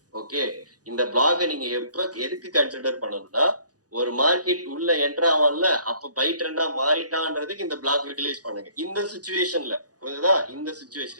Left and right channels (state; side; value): late; left; 0.68 ms